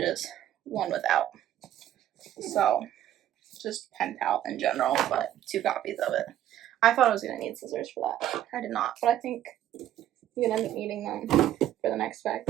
one without. So just Pen Pal in general, but 2 copies of it. I thought I was going to need scissors for that. I did not, but I think I'm going to end up needing them for the next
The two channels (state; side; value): quieter; left; 11.9 dB